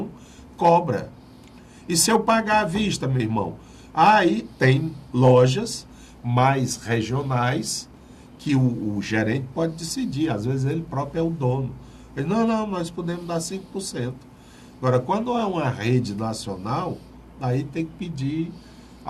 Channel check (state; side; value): identical; both; correlation 1.00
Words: cobra. E se eu pagar à vista, meu irmão? Aí tem lojas mais regionais que o gerente pode decidir. Às vezes ele próprio é o dono. Ele, não, nós podemos dar 5%. Agora, quando é uma rede nacional, aí tem que pedir